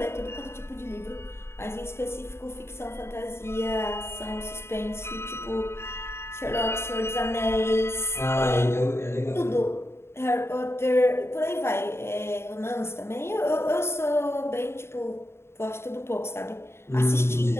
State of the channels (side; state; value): right; late; 0.12 ms